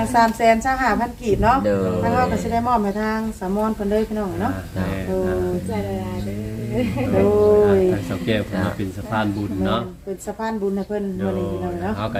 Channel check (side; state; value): both; identical; correlation 1.00